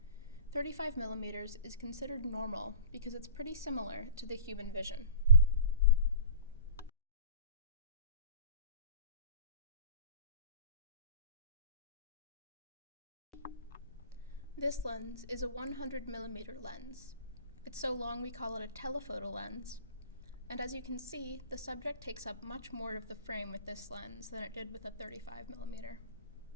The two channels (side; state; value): both; inverted; correlation -0.41